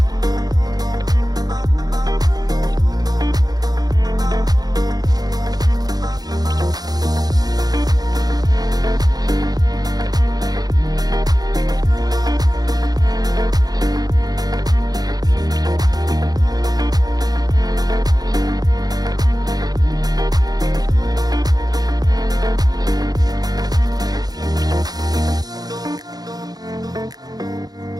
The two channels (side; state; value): left; late; 0.19 ms